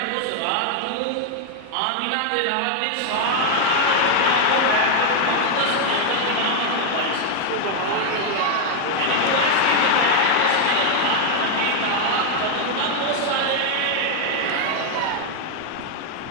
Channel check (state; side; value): different; both; correlation 0.00